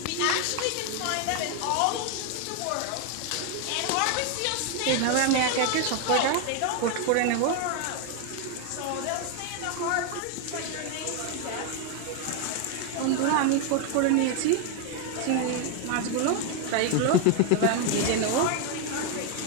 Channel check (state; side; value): different; both; correlation 0.01